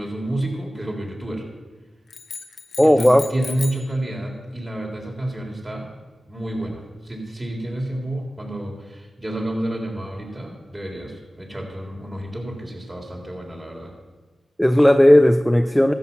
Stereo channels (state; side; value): normal; both; correlation 0.98